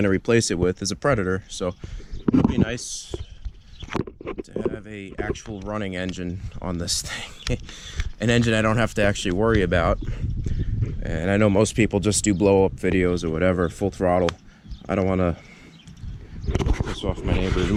to replace it with is a Predator, so it'll be nice to have a actual running engine on this thing. An engine I don't have to actually worry about. And I know most people just do blow up videos or whatever, full throttle. I don't want to piss off my neighbors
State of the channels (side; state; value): both; identical; correlation 1.00